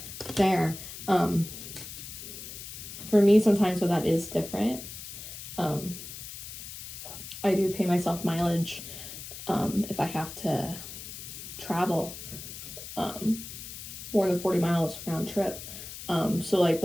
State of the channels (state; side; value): noise; left; hiss, 11 dB below the sound